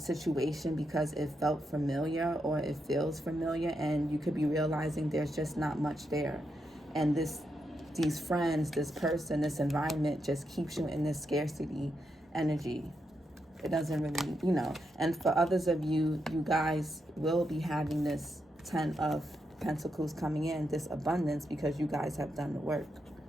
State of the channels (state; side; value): normal; both; correlation 0.83